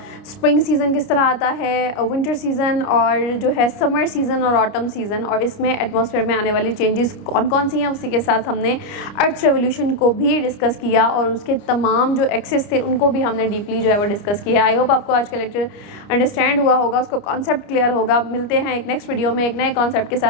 स्प्रिंग सीज़न किस तरह आता है, विंटर सीज़न और जो है समर सीज़न और ऑटम सीज़न, और इसमें एटमॉस्फेयर में आने वाली चेंजेस कौन कौन सी हैं। उसी के साथ हमने अर्थ रेवोल्यूशन को भी डिस्कस किया और उसके तमाम जो एक्सेस थे उनको भी हमने डीपली जो है वो डिस्कस किया। आई होप आपको आज का लेक्चर अंडरस्टैंड हुआ होगा, उसको कॉन्सेप्ट क्लियर होगा। मिलते हैं एक नेक्स्ट वीडियो में एक नए कॉन्सेप्ट के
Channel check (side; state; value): right; late; 29 ms